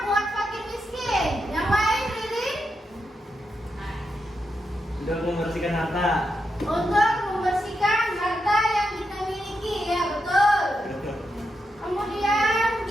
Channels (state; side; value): normal; both; correlation 0.85